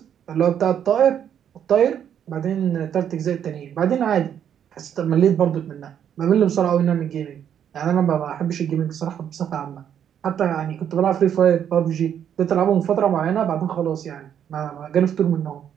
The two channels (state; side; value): quieter; left; 9.2 dB